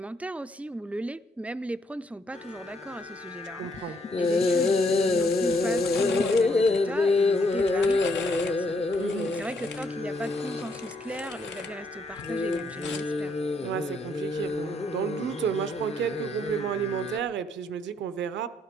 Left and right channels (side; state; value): both; normal; correlation 0.71